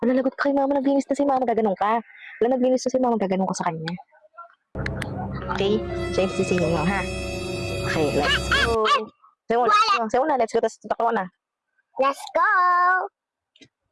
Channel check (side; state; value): both; identical; correlation 1.00